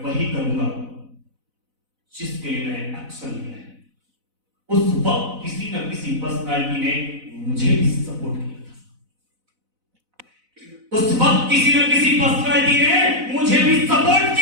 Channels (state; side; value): late; left; 4.0 ms